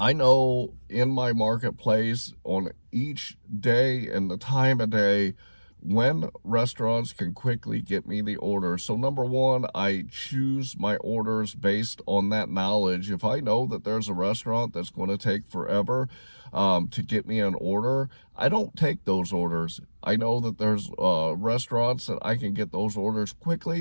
know in my marketplace on each day and the time of day when restaurants can quickly get me the order. So number one, I choose my orders based on that knowledge. If I know that there's a restaurant that's going to take forever to get me an order, I don't take those orders. I know that there's restaurants that I can get those orders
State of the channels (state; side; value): inverted; both; correlation -1.00